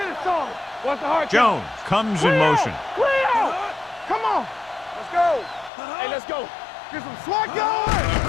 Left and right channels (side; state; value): right; drops out; at 5.7 s